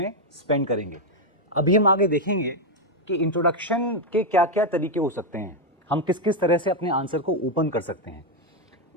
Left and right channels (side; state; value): both; normal; correlation 0.02